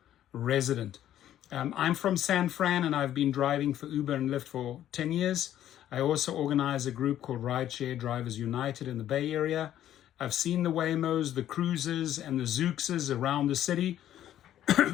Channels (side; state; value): right; quieter; 11.8 dB